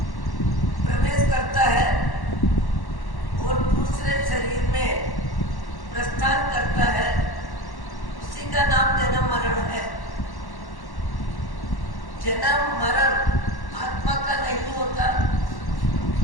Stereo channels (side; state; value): right; late; 1.1 ms